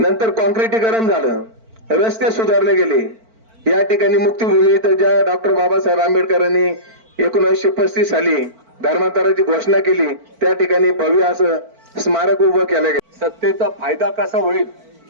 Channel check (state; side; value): late; left; 4.5 ms